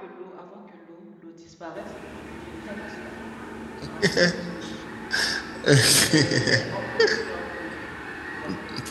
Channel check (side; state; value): both; identical; correlation 1.00